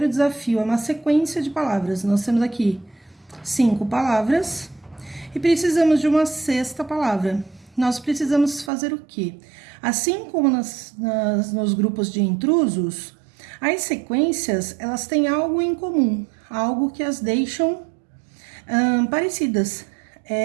desafio é uma sequência de palavras. Nós temos aqui 5 palavras e precisamos de uma sexta palavra. Nós precisamos fazer o quê? Assim como nos grupos de intrusos, as sequências, elas têm algo em comum, algo que as deixam parecidas,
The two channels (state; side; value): drops out; left; at 8.7 s